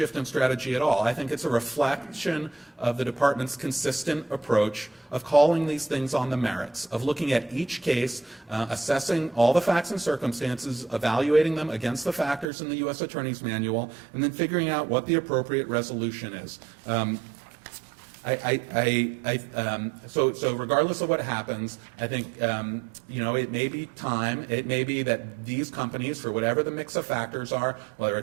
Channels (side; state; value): left; drops out; at 12.5 s